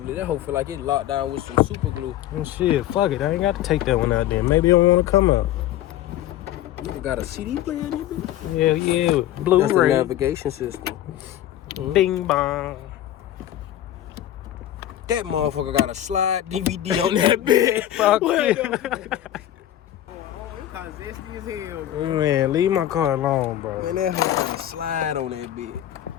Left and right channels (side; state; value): right; quieter; 12.6 dB